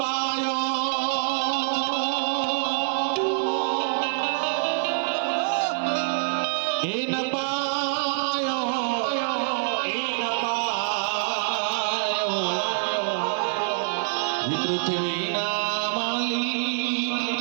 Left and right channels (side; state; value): left; silent; digital silence